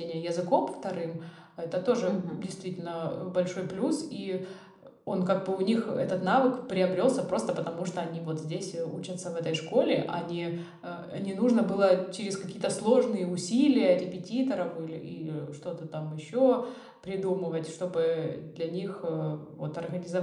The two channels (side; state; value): both; identical; correlation 1.00